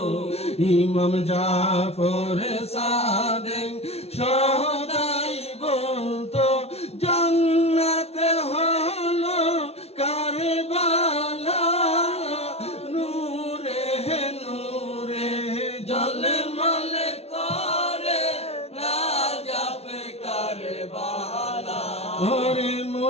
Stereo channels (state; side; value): late; right; 0.30 ms